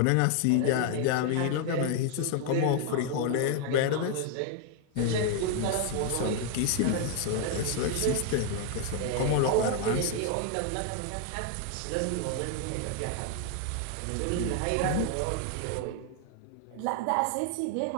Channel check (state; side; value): different; both; correlation 0.01